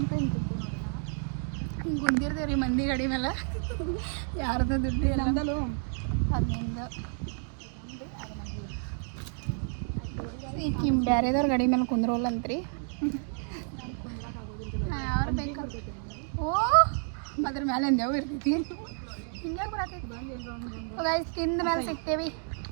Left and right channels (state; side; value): silent; left; 58 dB below the other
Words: ಹಿಂಗೆ ಕುಂದಿರ್ತೀವಿ ರೀ ಮಂದಿ ಗಾಡಿ ಮೇಲೆ. ಯಾರ್ದು ದುಡ್ಡು ನಮ್ದಲ್ಲೋ ಅದ್ರಿಂದ ಈಗ ಬೇರೆದವ್ರ ಗಾಡಿ ಮೇಲೆ ಕುಂದ್ರೋಲ್ಲಂತ್ರಿ. ಯಾರು ಬೇಕು? ಓ, ಅದ್ರ ಮೇಲೆ ಎಂದೇವು ಇರ್ತೈತಿ. ಹಿಂಗೆ ಬರತೈತಿ. ಗೈಸ್, ತಿಂದ ಮೇಲೆ ಸಿಗ್ತೇವಿ.